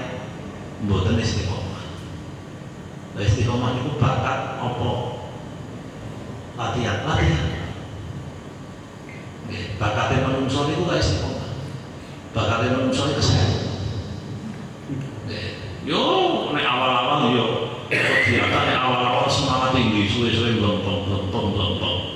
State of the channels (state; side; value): identical; both; correlation 1.00